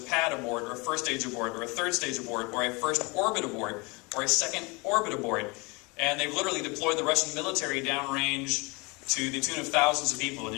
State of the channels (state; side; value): quieter; right; 27.8 dB